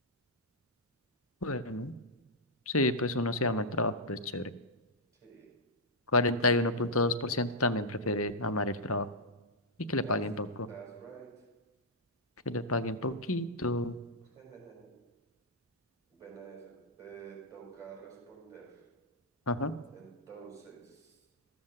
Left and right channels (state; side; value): normal; both; correlation -0.08